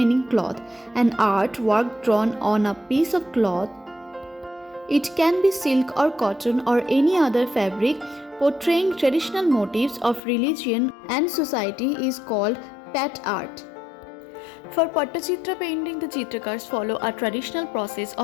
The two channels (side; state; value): right; drops out; at 10.2 s